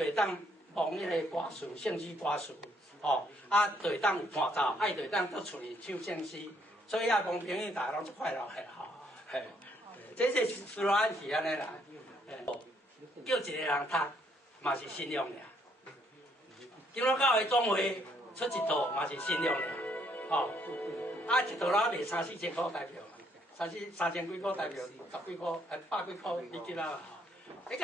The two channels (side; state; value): both; normal; correlation 0.69